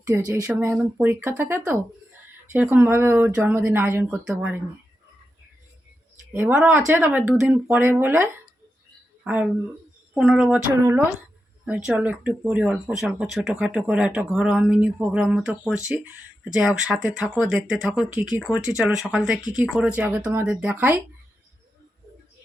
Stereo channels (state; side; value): normal; both; correlation 0.89